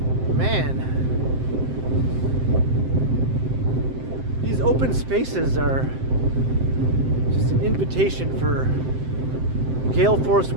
Open spaces are just an invitation for gale force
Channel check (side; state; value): left; late; 7.7 ms